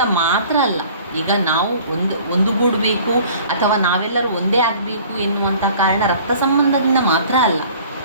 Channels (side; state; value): both; inverted; correlation -0.50